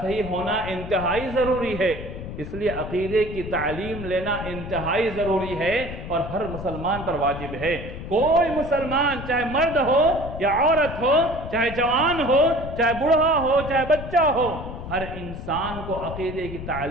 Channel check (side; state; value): left; noise; rumble, 9 dB below the sound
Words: صحیح ہونا انتہائی ضروری ہے۔ اس لیے عقیدے کی تعلیم لینا انتہائی ضروری ہے اور ہر مسلمان پر واجب ہے۔ کوئی مسلمان چاہے مرد ہو یا عورت ہو، چاہے جوان ہو، چاہے بوڑھا ہو، چاہے بچہ ہو، ہر انسان کو عقیدے کی